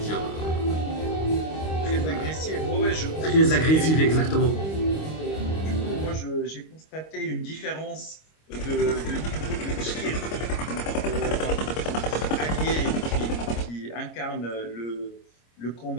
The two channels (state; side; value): late; right; 25 ms